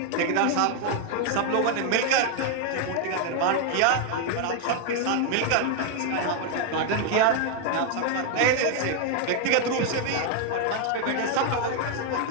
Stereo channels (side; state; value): both; different; correlation 0.00